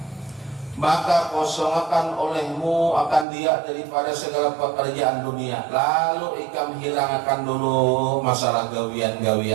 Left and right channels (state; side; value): drops out; left; at 3.2 s